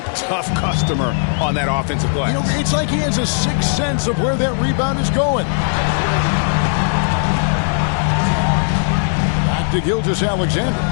tough customer on that offensive glass. You know, it's like he has a sixth sense of where that rebound is going. Back to Gilgeous-Alexander.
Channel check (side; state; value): right; silent; 68 dB below the other